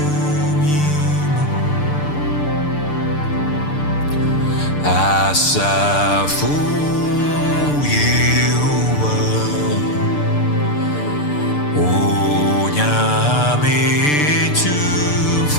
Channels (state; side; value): late; right; 6.8 ms